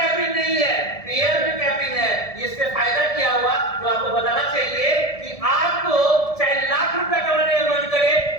नहीं है, पेयर में कैपिंग है। इससे फायदा क्या हुआ जो आपको बताना चाहिए कि आपको चाहे लाख रुपए कमाने का मन करे,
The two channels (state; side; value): late; right; 1.7 ms